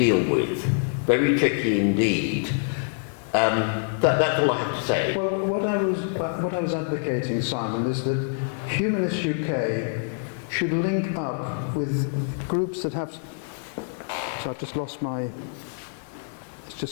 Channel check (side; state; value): right; silent; 57 dB below the other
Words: with. Very tricky indeed. That's all I have to say. Well, what I was advocating, Simon, is that Humanist UK should link up with groups that have... So I've just lost my... It's